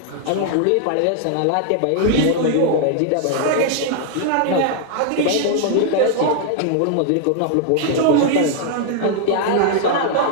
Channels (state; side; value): different; both; correlation 0.00